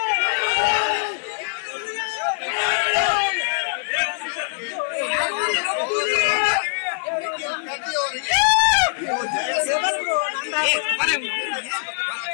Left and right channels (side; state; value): right; silent; 64 dB below the other